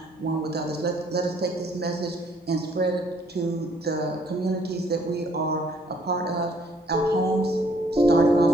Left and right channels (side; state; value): both; normal; correlation 0.63